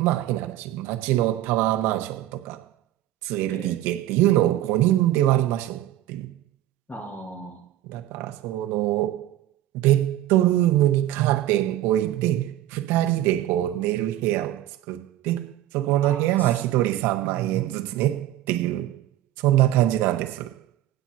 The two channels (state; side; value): quieter; left; 13.8 dB